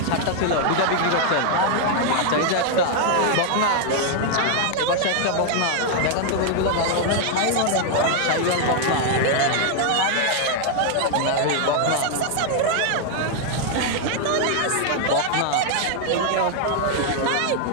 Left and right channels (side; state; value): both; different; correlation 0.00